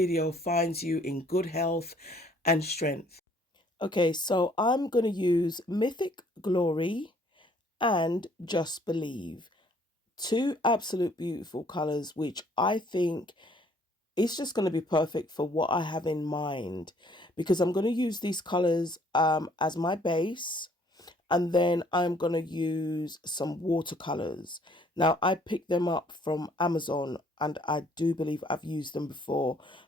finds you in good health and strength. Okay, so I'm going to use Mythic Glory and Just Believe. Two absolute beautiful colors, which I think it's just going to be perfect for what I have in mind, because I'm going to use these colors as my base, and then I'm going to use some watercolors. Now, I picked them up from Amazon, and I do believe I've used them before,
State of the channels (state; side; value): normal; both; correlation 0.61